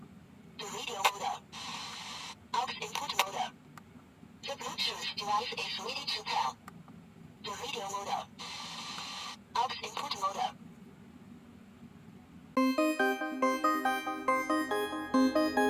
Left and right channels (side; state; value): both; identical; correlation 1.00